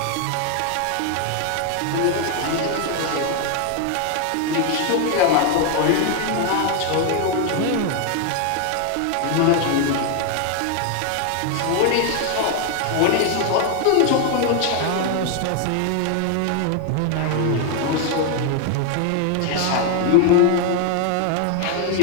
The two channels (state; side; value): different; both; correlation 0.01